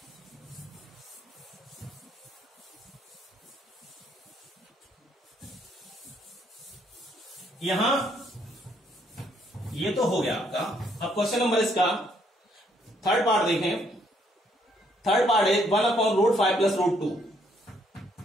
यहां ये तो हो गया आपका। अब क्वेश्चन नंबर इसका थर्ड पार्ट देखें। थर्ड पार्ट है 1/√5 प्लस √2।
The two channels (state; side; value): normal; both; correlation 0.69